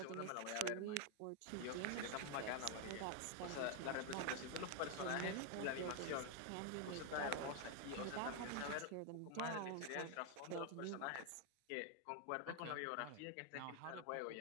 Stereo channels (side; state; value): both; different; correlation 0.00